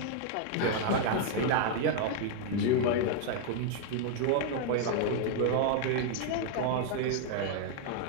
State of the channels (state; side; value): different; both; correlation 0.00